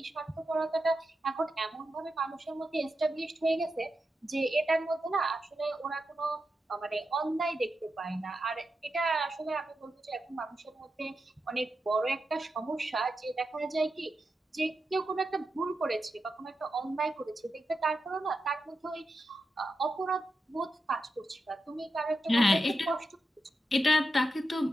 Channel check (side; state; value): both; normal; correlation 0.88